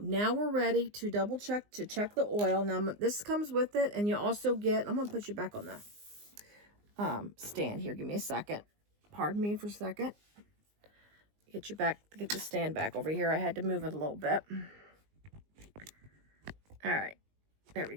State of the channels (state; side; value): late; left; 19 ms